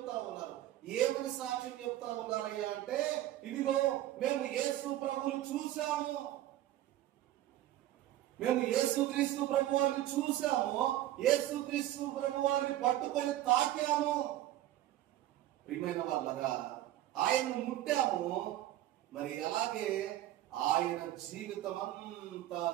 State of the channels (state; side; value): quieter; left; 13.9 dB